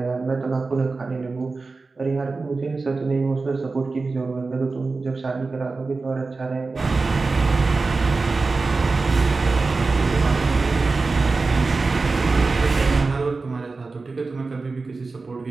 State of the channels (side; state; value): left; quieter; 3.9 dB